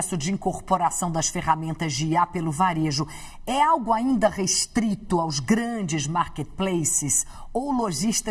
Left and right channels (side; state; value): both; identical; correlation 1.00